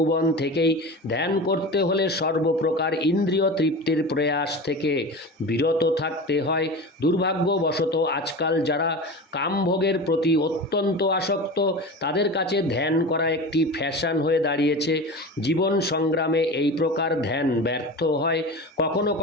থেকেই। ধ্যান করতে হলে সর্বপ্রকার ইন্দ্রিয় তৃপ্তির প্রয়াস থেকে বিরত থাকতে হয়। দুর্ভাগ্যবশত আজকাল যারা কামভোগের প্রতি অত্যন্ত আসক্ত তাদের কাছে ধ্যান করা একটি ফ্যাশন হয়ে দাঁড়িয়েছে। জীবন সংগ্রামে এই প্রকার ধ্যান ব্যর্থ হয়। কখনো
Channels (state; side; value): normal; both; correlation 0.30